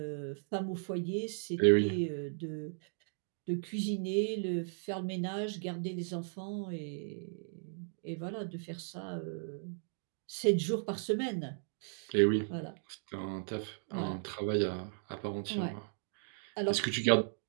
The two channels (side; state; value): left; silent; digital silence